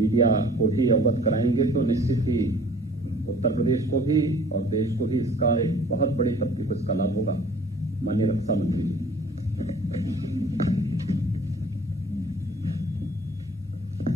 को भी अवगत कराएंगे तो निश्चित ही उत्तर प्रदेश को भी और देश को भी इसका एक बहुत बड़ी तबके को इसका लाभ होगा। माननीय रक्षा मंत्री जी।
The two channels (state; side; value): normal; both; correlation 0.51